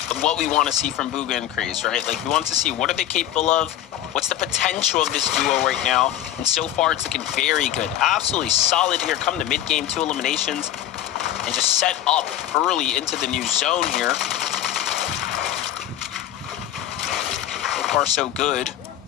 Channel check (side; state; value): right; quieter; 12.0 dB